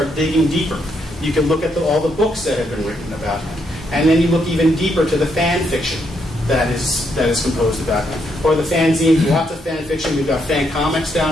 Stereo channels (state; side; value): normal; both; correlation 0.76